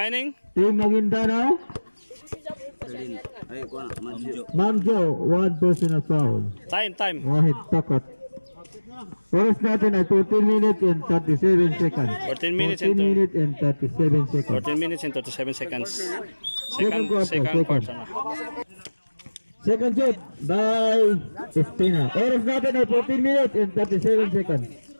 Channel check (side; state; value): both; inverted; correlation -1.00